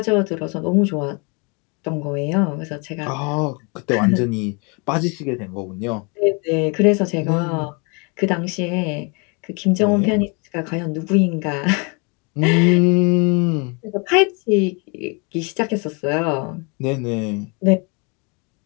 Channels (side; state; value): right; quieter; 32.5 dB